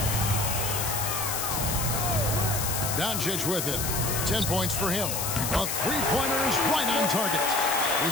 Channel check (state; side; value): noise; left; hiss, 2 dB below the sound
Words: Doncic with it. 10 points for him. A three-pointer is right on target.